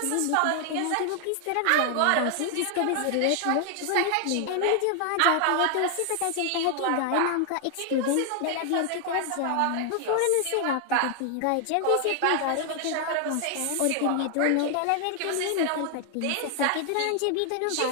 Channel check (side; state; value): both; different; correlation 0.00